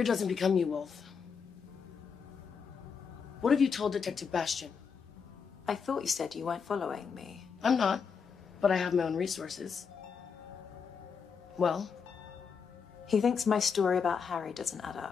doesn't become you, Wolf. What have you told Detective Bastian? I thought you said you weren't following me. I'm not, but I have my own resources. Well? He thinks my story about Harry doesn't add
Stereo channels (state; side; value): quieter; right; 6.1 dB